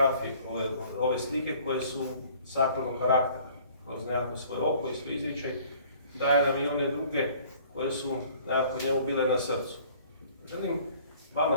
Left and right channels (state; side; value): inverted; both; correlation -0.54